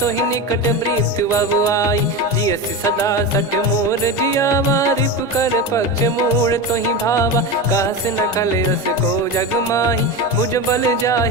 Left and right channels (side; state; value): both; normal; correlation 0.21